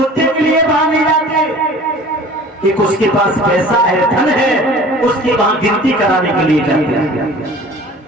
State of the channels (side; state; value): both; normal; correlation 0.45